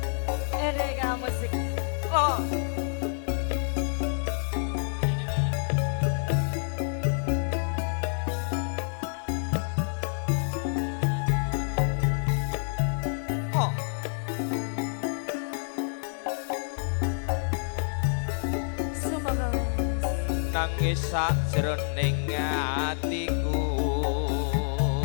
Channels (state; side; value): silent; right; 59 dB below the other